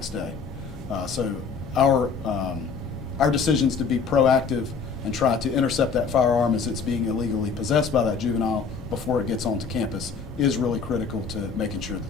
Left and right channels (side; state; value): right; quieter; 5.5 dB